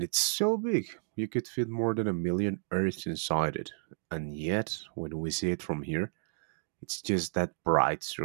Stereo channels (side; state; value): left; silent; digital silence